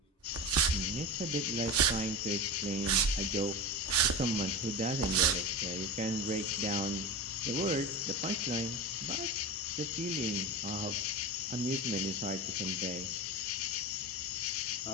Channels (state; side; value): normal; both; correlation 0.25